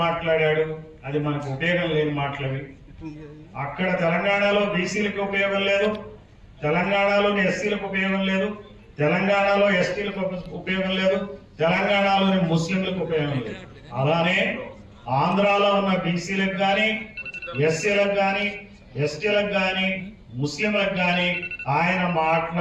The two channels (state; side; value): identical; both; correlation 1.00